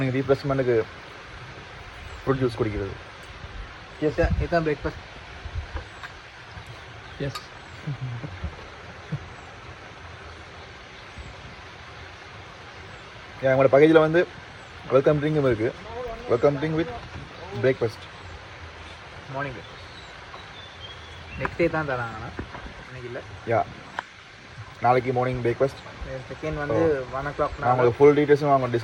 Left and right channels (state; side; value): identical; both; correlation 1.00